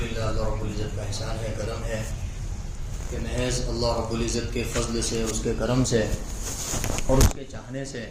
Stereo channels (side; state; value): both; identical; correlation 1.00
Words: اللہ رب العزت کا احسان ہے، کرم ہے کہ محض اللہ رب العزت کے فضل سے، اس کے کرم سے اور اس کے چاہنے سے